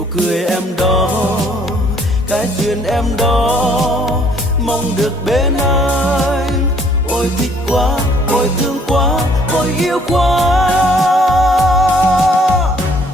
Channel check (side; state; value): both; normal; correlation 0.62